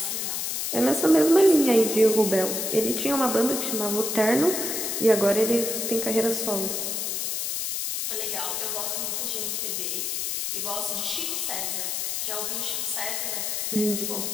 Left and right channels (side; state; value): left; noise; hiss, 1 dB below the sound